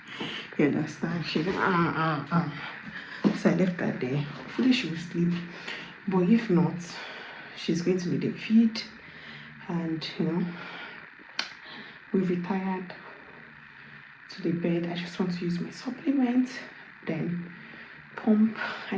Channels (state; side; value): identical; both; correlation 1.00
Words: You understand? She went, So I left her there. Hopefully she will sleep. But if not, she's going to need a feed. And, we've retired to the bed. I just want to use my supplement. Then pump. I